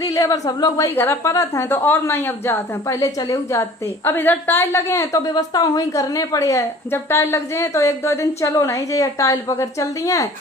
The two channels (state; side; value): normal; both; correlation 0.47